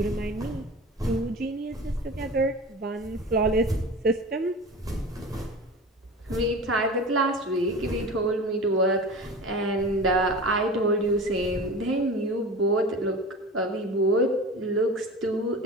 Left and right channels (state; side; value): normal; both; correlation 0.34